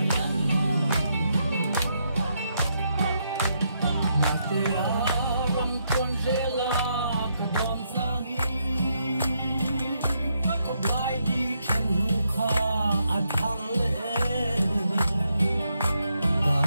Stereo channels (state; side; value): inverted; both; correlation -0.78